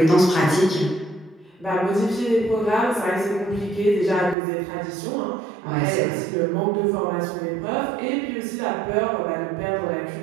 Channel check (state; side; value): drops out; left; at 4.4 s